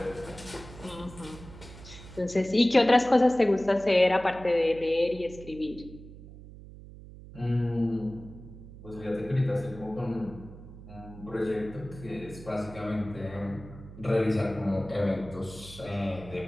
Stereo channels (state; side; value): noise; right; hum, 16 dB below the sound